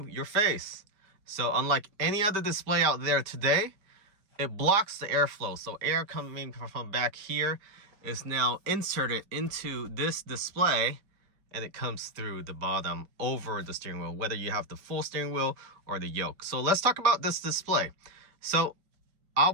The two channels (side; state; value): left; late; 5.0 ms